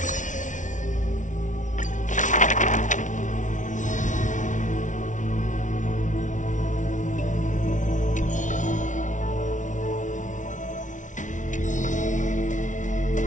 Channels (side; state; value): right; late; 0.37 ms